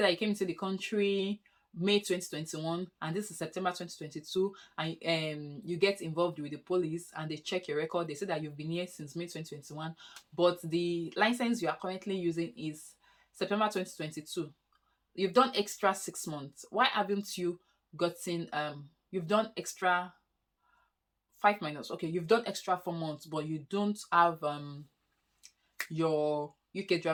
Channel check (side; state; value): both; identical; correlation 1.00